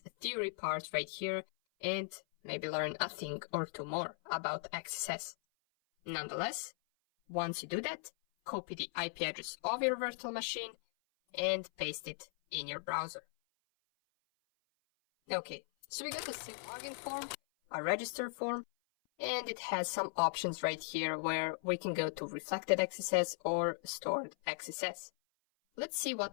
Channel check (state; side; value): silent; right; 52 dB below the other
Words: theory part right here and maybe learn a thing or two more about XSS. Nonetheless, once you do that, copy the IP address of your virtual machine and paste it in your browser. Okay, so we got a simple login form, a register form, and it has some options right here where we can go to reflected XSS or stored XSS. Let's see